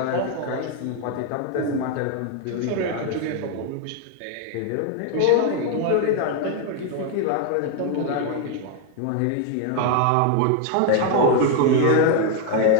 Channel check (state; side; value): different; both; correlation 0.00